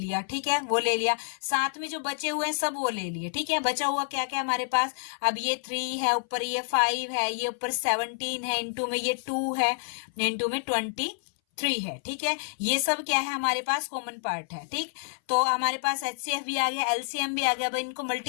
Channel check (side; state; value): right; silent; 59 dB below the other